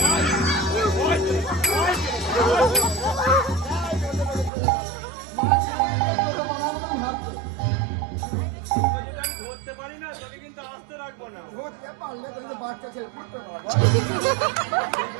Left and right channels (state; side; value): drops out; left; at 4.5 s